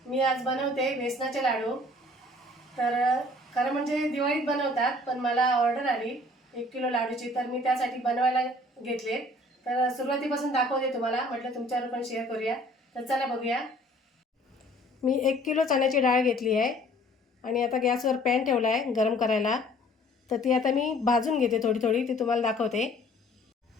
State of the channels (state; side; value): normal; both; correlation 0.54